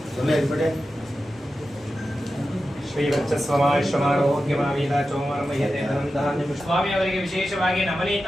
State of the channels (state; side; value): normal; both; correlation 0.92